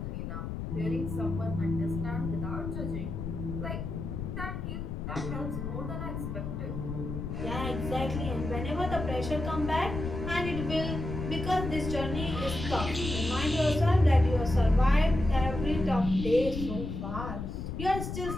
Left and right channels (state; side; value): noise; left; rumble, 5 dB below the sound